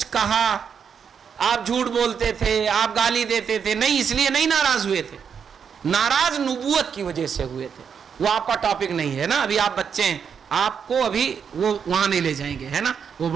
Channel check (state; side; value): quieter; left; 7.0 dB